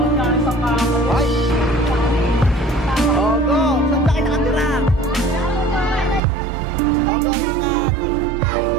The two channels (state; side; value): drops out; left; at 6.2 s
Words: na sa kamo. Ay! Oh, go! Saan ba kayo nakatira? Oh, go, ingat!